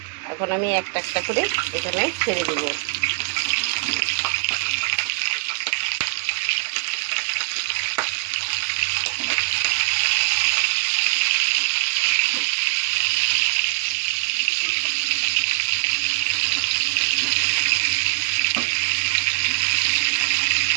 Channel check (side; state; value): left; quieter; 31.6 dB